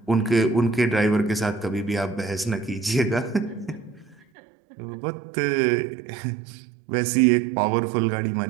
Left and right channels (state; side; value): drops out; left; at 4.2 s